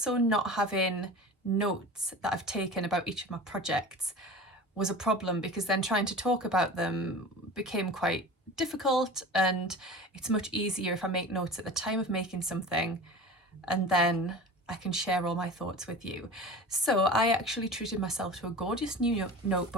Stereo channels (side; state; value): both; normal; correlation 0.35